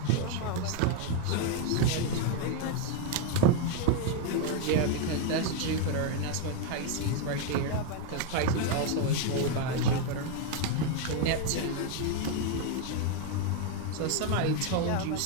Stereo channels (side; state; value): both; different; correlation 0.01